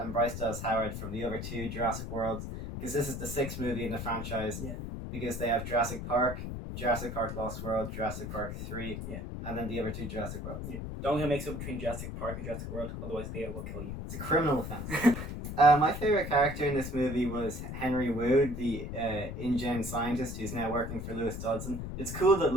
Bryce Dallas Howard from the other two Jurassic Worlds, because this is the sixth movie in the franchise. Yeah. Because they have Jurassic Park Lost World, Jurassic Park 3, Yeah. and then the other two Jurassic Worlds. Yeah. Don't get mixed up between Jurassic Park and Jurassic World, otherwise Leo will kill you. It's a criminal offense. My favorite character in this movie was Henry Wu, the InGen scientist who's now working for Lewis Dodson. It's cool that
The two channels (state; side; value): noise; left; rumble, 6 dB below the sound